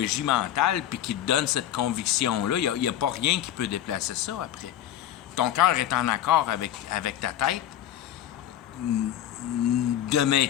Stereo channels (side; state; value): right; quieter; 11.6 dB